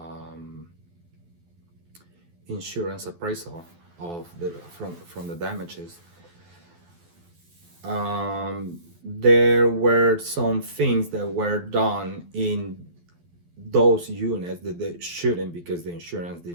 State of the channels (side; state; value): left; late; 12 ms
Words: insurance appraisal of from the damages. There were some things that were done in those units that they shouldn't, because the insurance